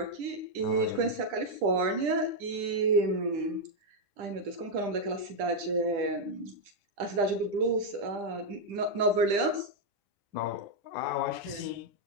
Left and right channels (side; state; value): left; late; 10 ms